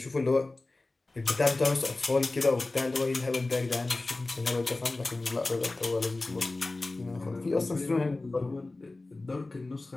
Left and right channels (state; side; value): quieter; right; 3.1 dB